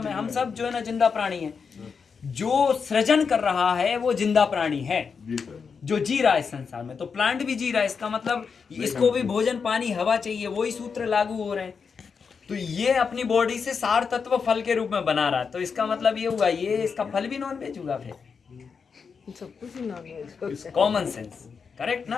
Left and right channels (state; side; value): quieter; right; 5.7 dB